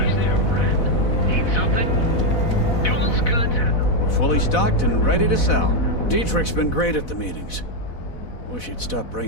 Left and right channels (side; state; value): right; late; 4.0 ms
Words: Fully stocked and ready to sell. Dietrich's been great at the meetings. Wish he'd stop